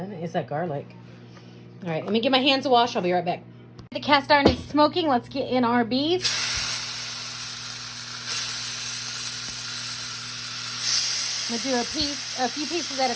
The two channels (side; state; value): both; identical; correlation 1.00